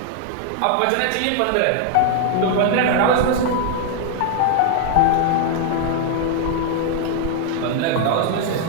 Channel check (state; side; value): different; both; correlation 0.00